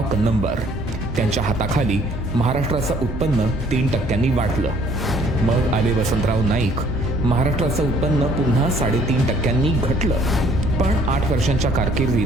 कन्नमवार. त्यांच्या हाताखाली महाराष्ट्राचं उत्पन्न 3% वाढलं. मग आले वसंतराव नाईक. महाराष्ट्राचं उत्पन्न पुन्हा 3.5% घटलं. पण 8 वर्षांच्या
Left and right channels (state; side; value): normal; both; correlation 0.59